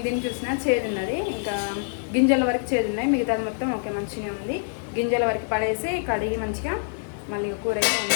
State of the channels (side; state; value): right; silent; 60 dB below the other